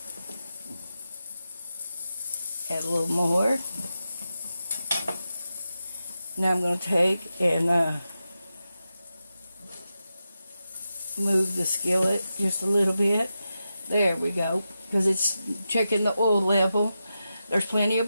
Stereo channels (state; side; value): inverted; both; correlation -0.90